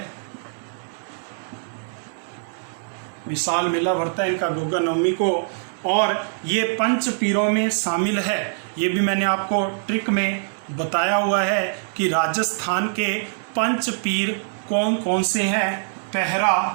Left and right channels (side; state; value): left; silent; 63 dB below the other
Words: विशाल मेला भरता है इनका गोगा नवमी को, और ये 5 पीरों में शामिल है। ये भी मैंने आपको ट्रिक में बताया हुआ है कि राजस्थान के 5 पीर कौन कौन से हैं। पहरा